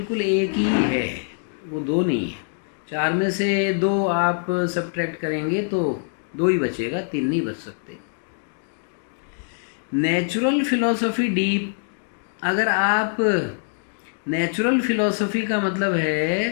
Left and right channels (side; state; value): right; silent; digital silence